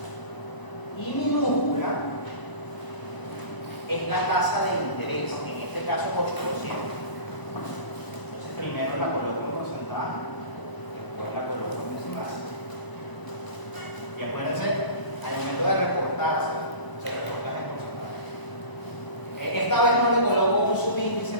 Y minúscula es la tasa de interés, en este caso 8%. Entonces primero la coloco en porcentaje, después la coloco en decimal. Y acuérdense, al momento de reportarse, se reporta en porcentaje. Esta vez no le coloco un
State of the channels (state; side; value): late; right; 1.0 ms